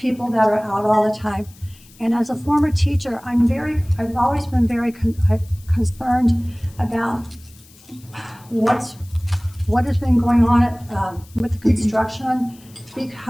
that are out all the time. And as a former teacher, I've always been very concerned about what has been going on with the construction,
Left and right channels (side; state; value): left; noise; hiss, 25 dB below the sound